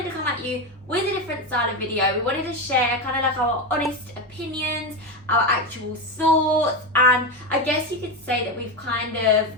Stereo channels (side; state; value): both; normal; correlation 0.14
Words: to come at you with a different style of video. We wanted to share kind of like our honest opinions, our actual thoughts, and I guess you could say that we've kind of